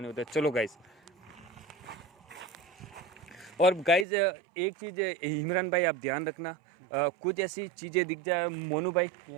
नहीं होता है। चलो गाइज। और गाइज एक चीज़ इमरान भाई आप ध्यान रखना, कुछ ऐसी चीज़ें दिख जाए मोनू भाई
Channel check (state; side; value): drops out; left; at 4.0 s